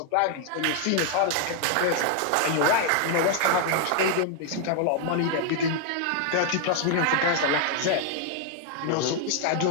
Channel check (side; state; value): both; different; correlation 0.00